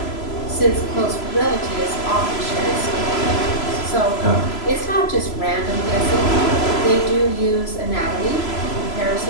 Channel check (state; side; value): late; right; 3.0 ms